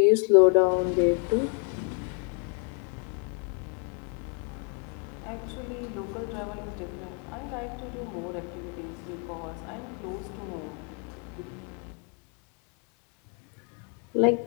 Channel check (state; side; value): quieter; right; 39.7 dB